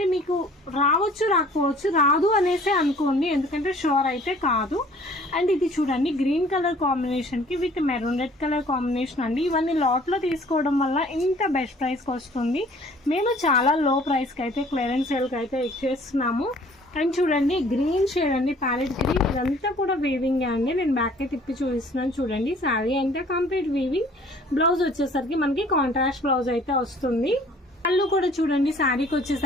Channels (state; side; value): normal; both; correlation 0.54